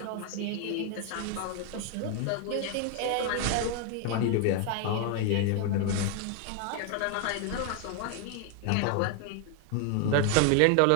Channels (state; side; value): different; both; correlation 0.00